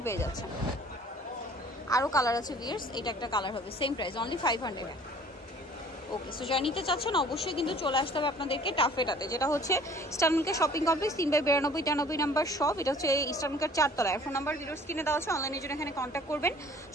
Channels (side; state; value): both; normal; correlation 0.52